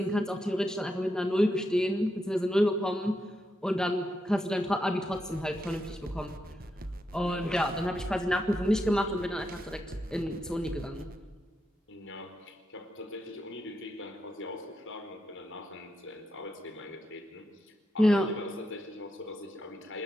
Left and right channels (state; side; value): normal; both; correlation 0.84